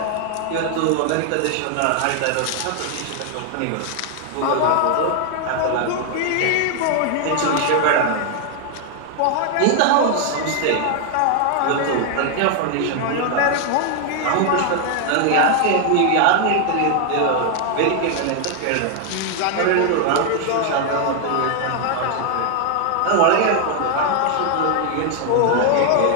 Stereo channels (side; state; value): both; different; correlation 0.00